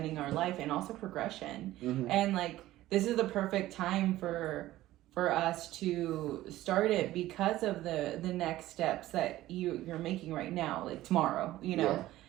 our life and also progression, and like this is the perfect time for us to start it because of the next steps that you're making right now, like tomorrow,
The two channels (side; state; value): left; quieter; 15.5 dB